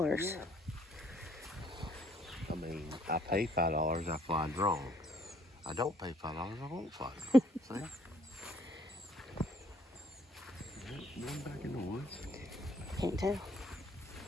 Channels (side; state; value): both; normal; correlation 0.63